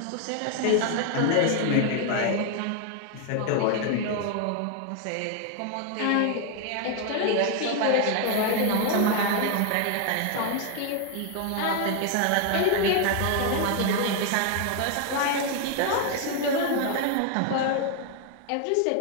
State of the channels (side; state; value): both; different; correlation 0.01